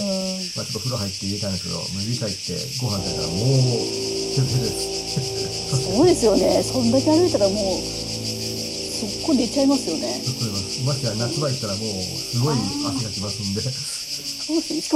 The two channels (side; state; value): both; identical; correlation 1.00